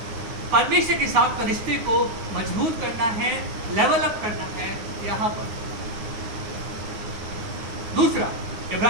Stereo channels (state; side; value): late; left; 9.7 ms